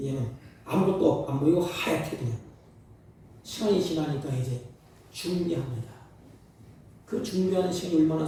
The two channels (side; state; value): both; identical; correlation 1.00